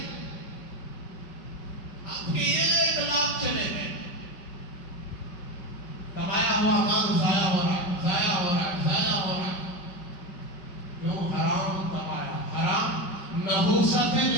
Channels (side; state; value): right; late; 5.2 ms